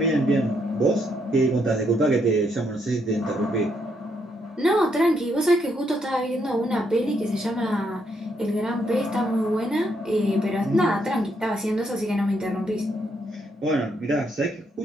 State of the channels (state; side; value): normal; both; correlation 0.75